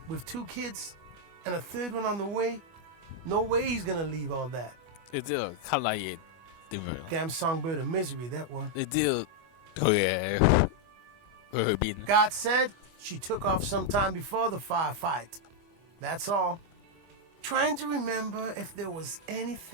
with 2 kids, and a 3rd one on the way. No way he's gonna leave all that. 你知道卡拉嘢點樣？ Damn songbird of misery, that one. 你知道佢去邊？ God said she took off sometime before the firefight. That's all. Trying to remember if there was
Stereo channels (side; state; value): left; late; 25 ms